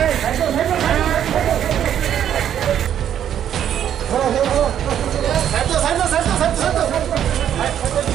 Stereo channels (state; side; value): quieter; left; 9.9 dB